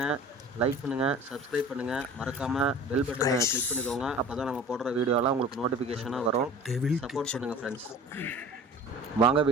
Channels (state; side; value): normal; both; correlation 0.42